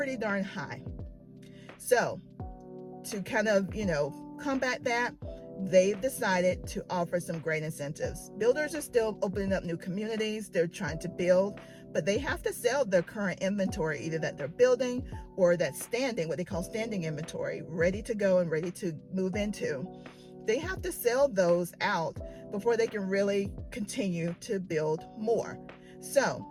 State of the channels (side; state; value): both; identical; correlation 1.00